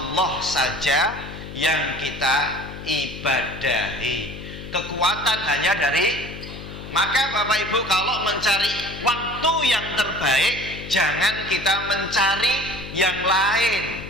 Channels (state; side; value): noise; left; hum, 11 dB below the sound